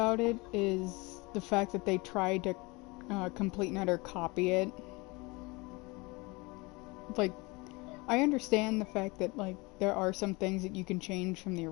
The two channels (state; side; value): quieter; right; 25.3 dB